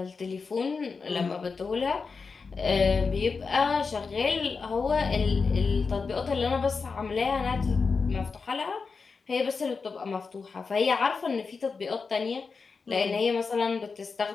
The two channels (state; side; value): quieter; right; 4.8 dB